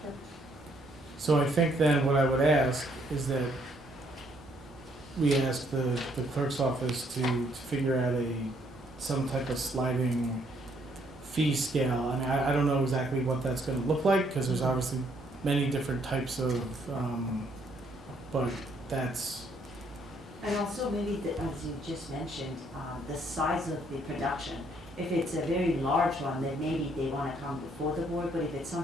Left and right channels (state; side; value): normal; both; correlation 0.68